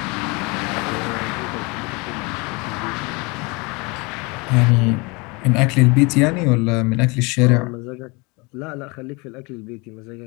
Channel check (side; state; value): right; quieter; 27.9 dB